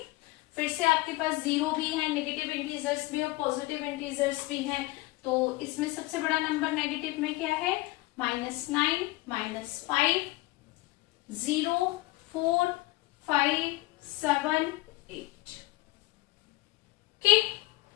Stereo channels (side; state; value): right; quieter; 20.6 dB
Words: फिर से आपके पास 0 भी है, नेगेटिव इंटीजर्स भी और पॉजिटिव इंटीजर्स भी हैं। तो इसमें सबसे बड़ा नंबर नेगेटिव में क्या है, -9, -5, 0, 4, 5, 7, 8। Okay,